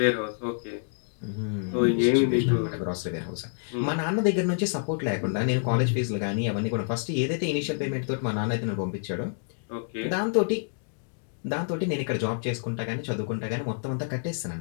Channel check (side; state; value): right; silent; digital silence